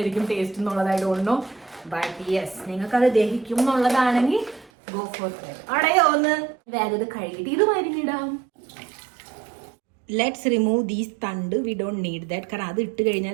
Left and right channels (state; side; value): drops out; left; at 4.7 s